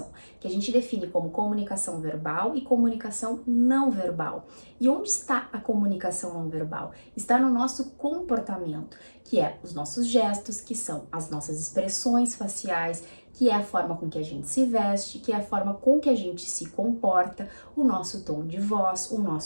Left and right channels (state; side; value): inverted; both; correlation -1.00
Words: que a gente define como comunicação verbal e comunicação não verbal. E onde está a comunicação não verbal? Está no nosso comportamento, que é os nossos gestos, que são as nossas expressões faciais, que é a forma com que a gente se veste, que é a forma com que a gente se comporta, o nosso tom de voz, o